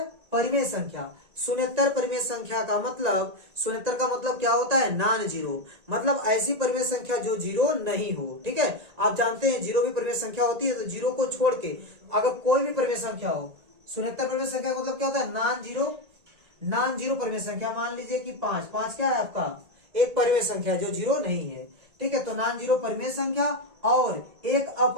परिमेय संख्या। शून्येतर परिमेय संख्या का मतलब, शून्येतर का मतलब क्या होता है? नॉन जीरो, मतलब ऐसी परिमेय संख्या जो जीरो नहीं हो। ठीक है, आप जानते हैं जीरो भी परिमेय संख्या होती है, तो जीरो को छोड़ के अगर कोई भी परिमेय संख्या हो, शून्येतर परिमेय संख्या का मतलब क्या होता है? नॉन जीरो परिमेय संख्या। मान लीजिए कि 5 क्या है आपका? एक परिमेय संख्या जो जीरो नहीं है। ठीक है, तो नॉन जीरो परिमेय संख्या और एक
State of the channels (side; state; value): left; late; 1.8 ms